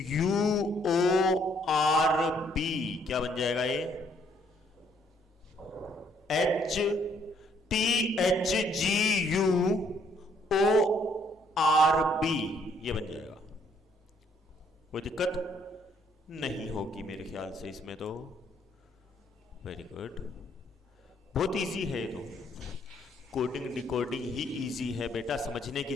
U O R B क्या बन जाएगा ये, HTHGUORB ये बन जाएगा। कोई दिक्कत नहीं होगी मेरे ख्याल से इसमें तो। वेरी गुड, बहुत इजी है ये तो। कोडिंग डिकोडिंग ही इजी है बेटा, समझने की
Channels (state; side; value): normal; both; correlation 0.67